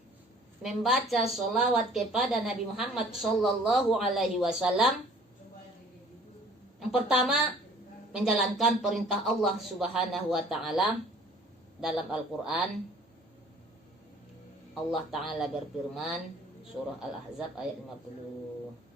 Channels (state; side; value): normal; both; correlation 0.53